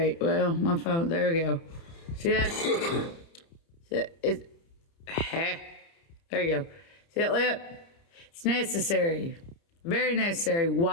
Well, my phone, there we go. See that? See that? There you go. See that lip? It's necessary. Very necessary.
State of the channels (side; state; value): right; late; 30 ms